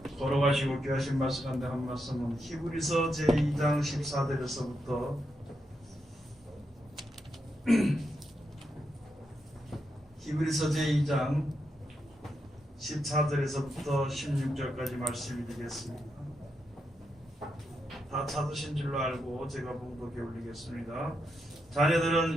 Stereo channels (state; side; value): normal; both; correlation 0.83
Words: 걸어가시고 귀하신 말씀 가운데 한 말씀은 히브리서 제2장 14절에서부터 히브리서 제2장 14절에서부터 16절까지 말씀이 되겠습니다. 다 찾으신 줄로 알고 제가 봉독해 올리겠습니다.